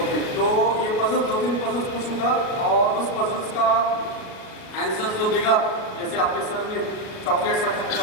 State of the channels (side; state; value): right; late; 38 ms